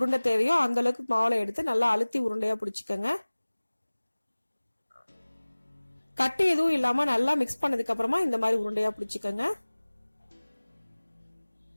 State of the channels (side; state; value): both; inverted; correlation -1.00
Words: தேவையோ அந்த அளவுக்கு மாவுல எடுத்து நல்லா அழுத்தி உருண்டையா பிடிச்சிக்கங்க. கட்டி எதுவும் இல்லாம நல்லா மிக்ஸ் பண்ணதுக்கு அப்புறமா இந்த மாதிரி உருண்டையா பிடிச்சிக்கங்க.